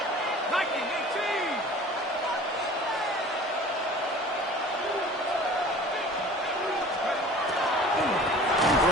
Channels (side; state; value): both; normal; correlation 0.44